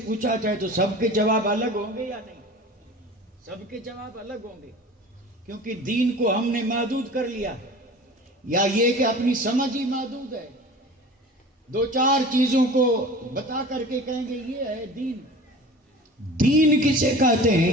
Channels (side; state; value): both; normal; correlation 0.39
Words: پوچھا جائے تو سب کے جواب الگ ہوں گے یا نہیں؟ سب کے جواب الگ ہوں گے، کیونکہ دین کو ہم نے محدود کر لیا، یا یہ کہ اپنی سمجھ ہی محدود ہے. 2-4 چیزوں کو بتا کر کے کہیں گے یہ ہے دین. دین کسے کہتے